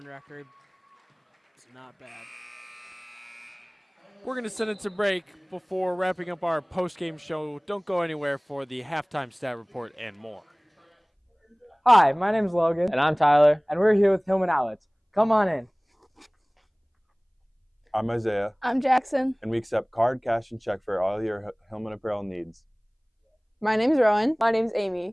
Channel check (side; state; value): both; identical; correlation 1.00